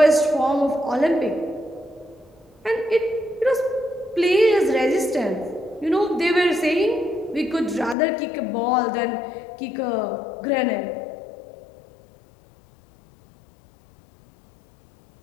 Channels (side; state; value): right; drops out; at 8.0 s